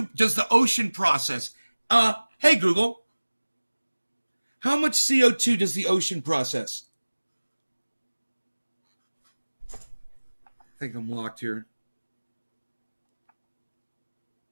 does the ocean process? Hey Google. How much CO2 does the ocean process? I think I'm locked here.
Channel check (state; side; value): inverted; both; correlation -1.00